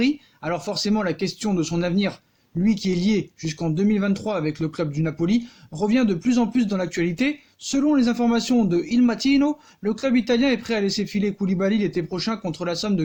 alors forcément la question de son avenir, lui qui est lié jusqu'en 2023 avec le club du Napoli, revient de plus en plus dans l'actualité. Selon les informations de Il Mattino, le club italien est prêt à laisser filer Koulibaly l'été prochain contre la somme de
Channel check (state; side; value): identical; both; correlation 1.00